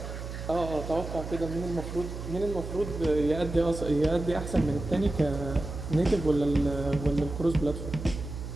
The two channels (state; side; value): noise; right; hum, 8 dB below the sound